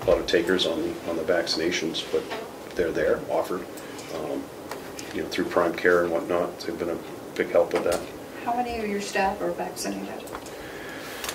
takers on the vaccinations, but they're there, offered, through Prime Care and whatnot. They've been a big help with that. How many of your staff are vaccinated?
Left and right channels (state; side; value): identical; both; correlation 1.00